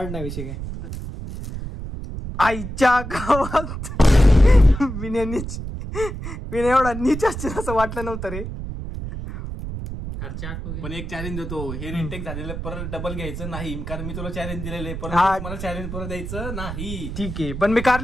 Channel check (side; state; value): right; noise; rumble, 7 dB below the sound